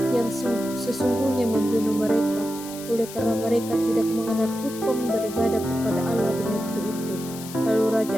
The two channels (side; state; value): left; noise; hiss, 14 dB below the sound